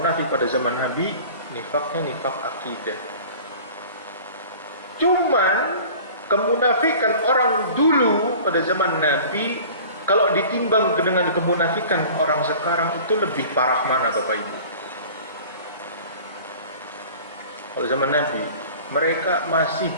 pada zaman Nabi, nifaknya nifak akidah. Cuman kemunafikan orang dulu pada zaman Nabi, kalau ditimbang dengan kemunafikan orang sekarang, itu lebih parah mana Bapak Ibu? Kalau zaman Nabi, mereka masih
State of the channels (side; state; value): both; inverted; correlation -0.43